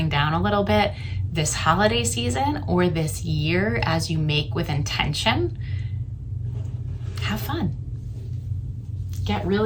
down a little bit this holiday season or this year as you make with intention, have fun. Get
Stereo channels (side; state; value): both; identical; correlation 1.00